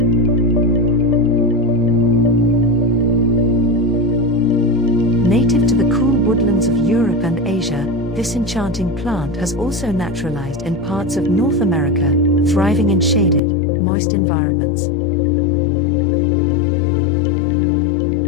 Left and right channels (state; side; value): drops out; right; at 13.4 s